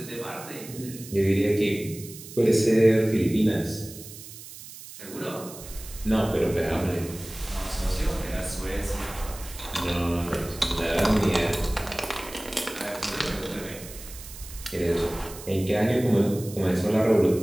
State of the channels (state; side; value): noise; right; hiss, 15 dB below the sound